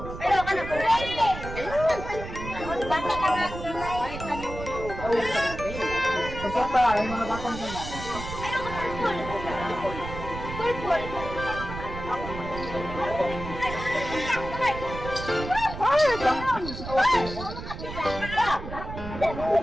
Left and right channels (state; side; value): noise; right; rumble, 9 dB below the sound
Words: Ayaw ka na. Bata ka na. Isa pa, yung mga batang gamay. Ayaw ka na. Purple.